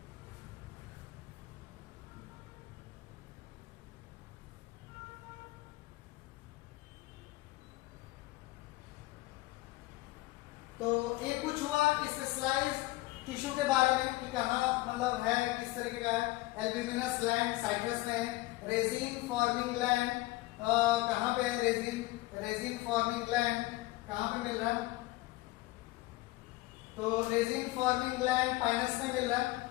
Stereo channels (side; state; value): right; quieter; 19.5 dB